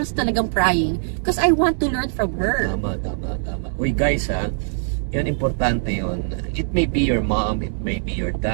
talagang prying. Because I want to learn from her. Tama. Uy, guys, yan, importante yun. It may be your mom, it may be your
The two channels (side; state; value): left; silent; digital silence